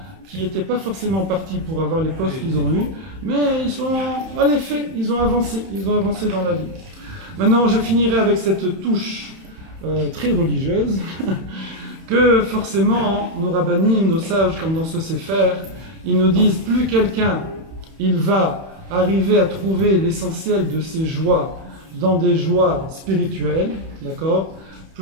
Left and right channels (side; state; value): left; late; 31 ms